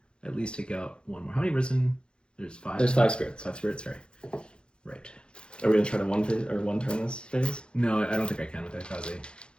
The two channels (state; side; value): late; right; 0.053 ms